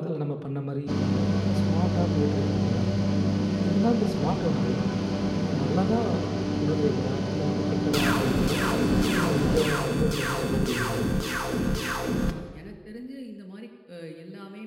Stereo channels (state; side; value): identical; both; correlation 1.00